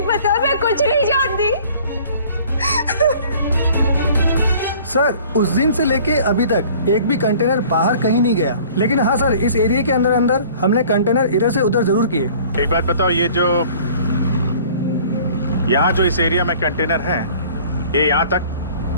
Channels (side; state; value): both; inverted; correlation -0.50